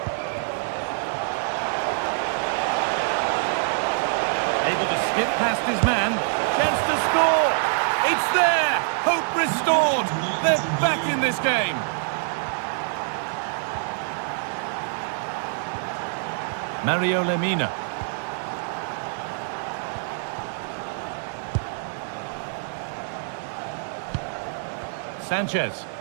Able to skip past his man. Chance to score. It's there. Hope restored. They're back in this game. Mario Lemina. Sanchez.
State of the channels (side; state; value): left; silent; digital silence